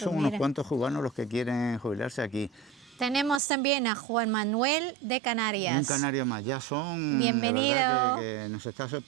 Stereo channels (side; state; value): left; drops out; at 3.4 s